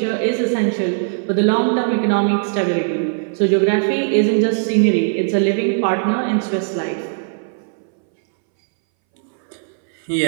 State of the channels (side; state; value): left; silent; 63 dB below the other